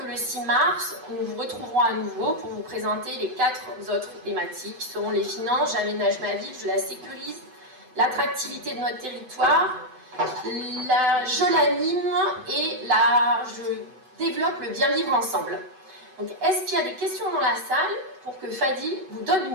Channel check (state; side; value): late; left; 7.8 ms